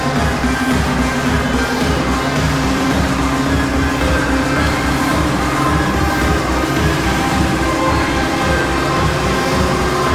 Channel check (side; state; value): both; identical; correlation 1.00